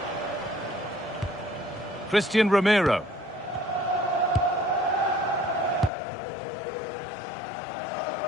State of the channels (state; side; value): drops out; right; at 5.9 s